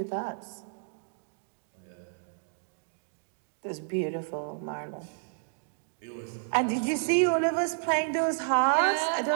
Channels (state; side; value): silent; left; digital silence